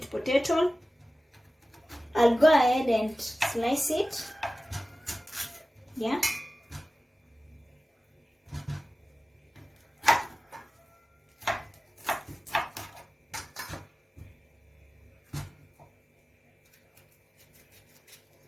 potato. I'll go ahead and slice it. Yeah.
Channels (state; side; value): normal; both; correlation 0.96